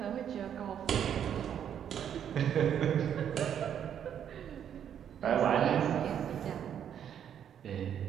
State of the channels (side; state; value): left; quieter; 9.1 dB